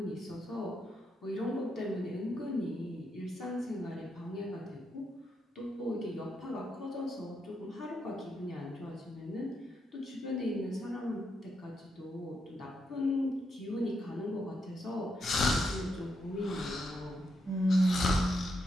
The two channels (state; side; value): normal; both; correlation 0.81